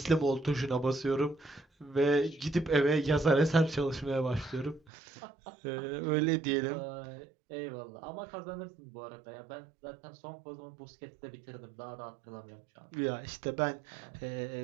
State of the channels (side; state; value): left; drops out; at 4.8 s